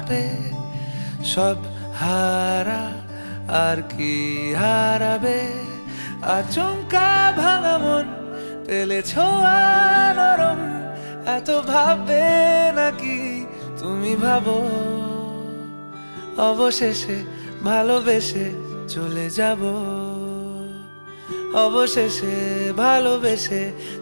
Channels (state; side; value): inverted; both; correlation -1.00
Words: কাঁপে, সব হারা আর কি হারাবে। আচমকা ভাঙা মন পেলে ছোঁয়া নরম, এত ভাববে নাকি তুমি ভাবো। অবশেষে ভালোবেসে চলে যাব, অবশেষে ভালোবেসে